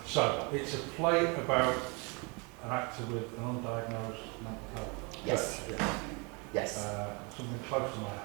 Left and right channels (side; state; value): left; quieter; 31.1 dB